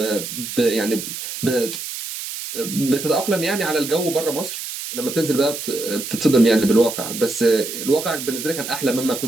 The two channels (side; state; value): right; noise; hiss, 7 dB below the sound